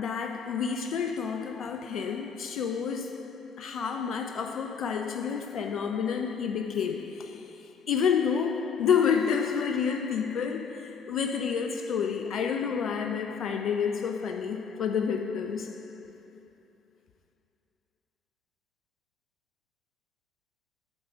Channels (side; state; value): right; quieter; 6.5 dB